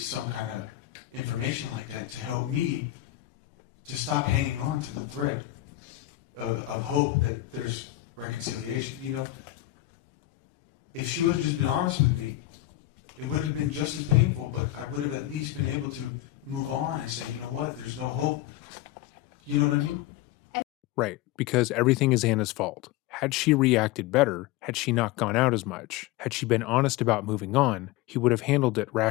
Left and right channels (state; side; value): quieter; right; 15.6 dB